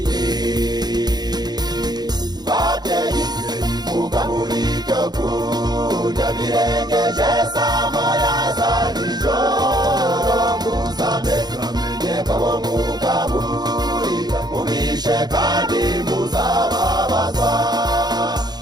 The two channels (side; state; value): left; late; 0.20 ms